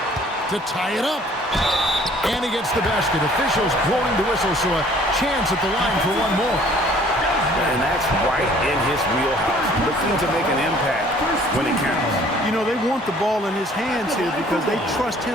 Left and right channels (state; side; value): normal; both; correlation 0.55